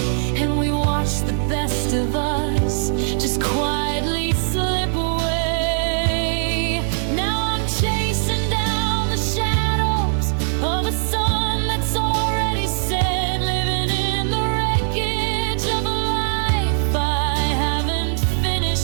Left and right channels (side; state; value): left; silent; digital silence